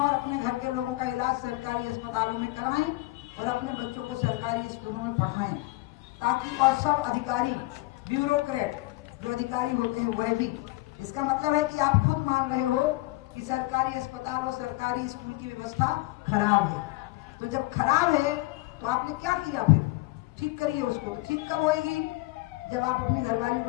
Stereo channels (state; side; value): quieter; right; 21.2 dB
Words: और अपने घर के लोगों का इलाज सरकारी अस्पतालों में कराएं और अपने बच्चों को सरकारी स्कूलों में पढ़ाएं, ताकि और सब अधिकारी, ब्यूरोक्रेट जो अधिकारी होते हैं वह भी। इसका मतलब है कि आप खुद मान रहे हो कि सरकारी अस्पताल और सरकारी स्कूल की व्यवस्था खराब है। तो जब खराब है तो आपने क्या किया? फिर ठीक करिए उसको। तो ठीक कब होएगी? जब आप अपनी घरवाली